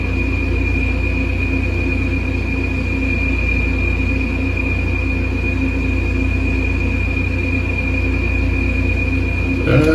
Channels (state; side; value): identical; both; correlation 1.00